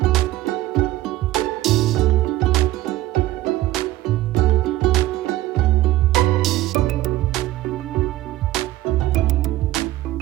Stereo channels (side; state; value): left; quieter; 15.8 dB